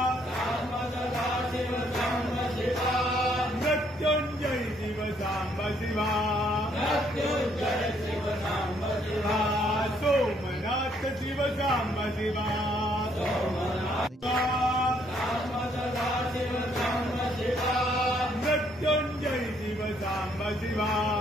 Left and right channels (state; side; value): normal; both; correlation 0.68